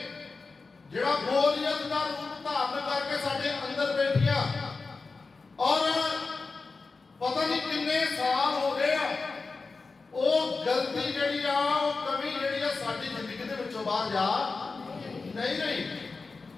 ਜਿਹੜਾ ਗੋਲੀਅਤ ਦਾ ਰੂਪ ਧਾਰਨ ਕਰਕੇ ਸਾਡੇ ਅੰਦਰ ਬੈਠੀਆਂ, ਔਰ ਪਤਾ ਨਹੀਂ ਕਿੰਨੇ ਸਾਲ ਹੋ ਗਏ ਆ, ਉਹ ਗਲਤੀ ਜਿਹੜੀ ਆ, ਉਹ ਕਮੀ ਜਿਹੜੀ ਆ ਸਾਡੀ ਜ਼ਿੰਦਗੀ ਦੇ ਵਿੱਚੋਂ ਬਾਹਰ ਜਾ ਨਹੀਂ ਰਹੀ।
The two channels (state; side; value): quieter; right; 4.1 dB